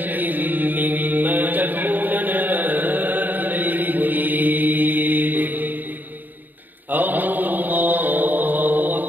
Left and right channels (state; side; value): late; left; 0.088 ms